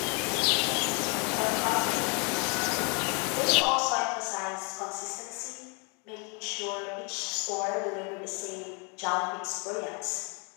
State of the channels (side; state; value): right; quieter; 34.3 dB